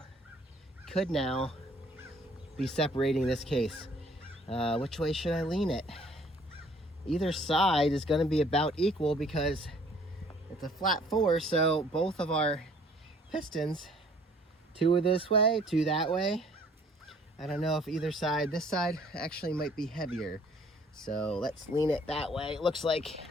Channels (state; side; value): normal; both; correlation 0.58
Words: could now be separating this case. Which way should I lean it? Either side is gonna be about equal because it's a flat 4, so both of our pistons, 2 are this way, 2 that way. I don't know if either side, this side actually might be heavier. So let's lean it that way. It looks like